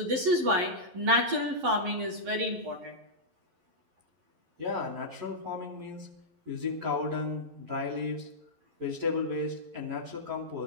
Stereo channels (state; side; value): late; left; 11 ms